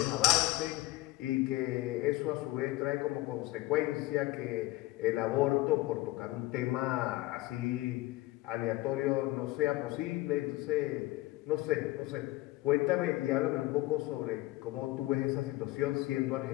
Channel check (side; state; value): right; quieter; 18.5 dB